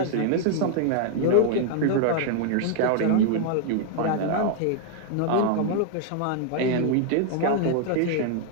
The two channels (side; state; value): both; different; correlation 0.00